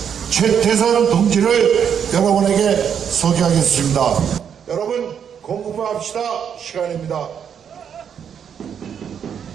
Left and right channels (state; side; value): quieter; left; 8.0 dB